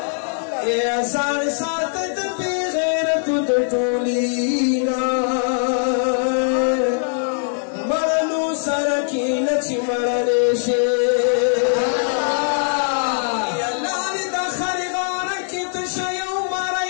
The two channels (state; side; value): silent; right; digital silence